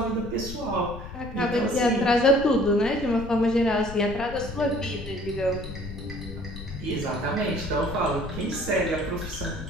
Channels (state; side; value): noise; left; rumble, 11 dB below the sound